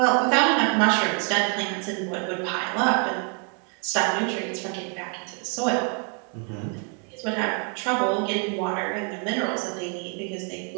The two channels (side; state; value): left; quieter; 39.5 dB